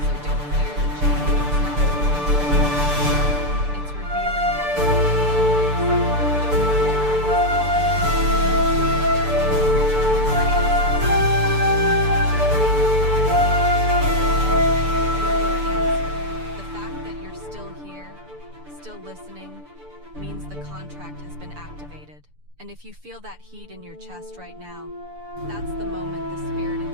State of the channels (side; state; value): left; late; 6.8 ms